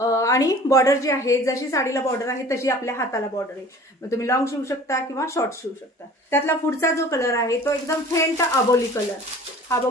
बॉर्डर जी आहे, जशी साडीला बॉर्डर आहे तशी आपल्या हाताला बॉर्डर आहे. मग तुम्ही लॉंग शिवू शकता किंवा शॉर्ट शिवू शकता. त्यातला पुढचा जो कलर आहे तो एकदम फेंट अबोली कलर, हा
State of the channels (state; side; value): normal; both; correlation 0.46